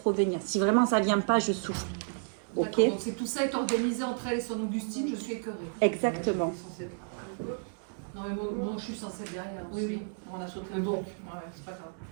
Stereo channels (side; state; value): left; silent; digital silence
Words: revenir. Si vraiment ça vient pas, je souffle. Ok. D'accord, donc tout ça est organisé entre elle et son Augustine, je suis écœurée. Exactement. Non mais moi je suis censée être derrière aussi. Oui, on a sauté Mais le bon. truc. Ouais, c'est pas grave.